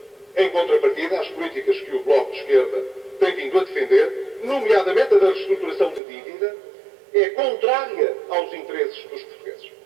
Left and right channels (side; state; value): left; drops out; at 6.0 s